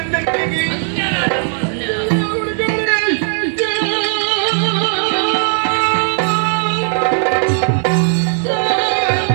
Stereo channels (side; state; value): left; silent; 55 dB below the other